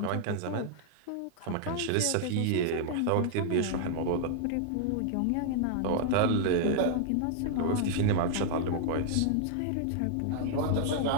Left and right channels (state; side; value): different; both; correlation -0.01